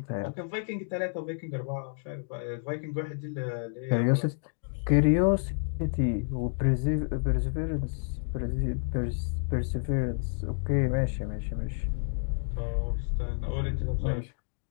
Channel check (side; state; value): right; silent; digital silence